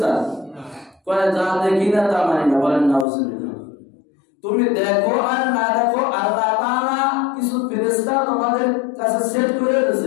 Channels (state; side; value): drops out; right; at 3.1 s